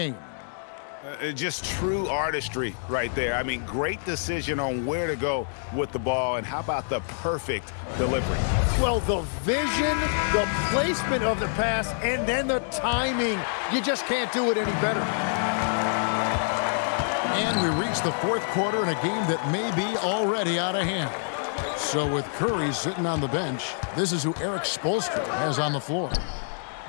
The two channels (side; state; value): right; silent; digital silence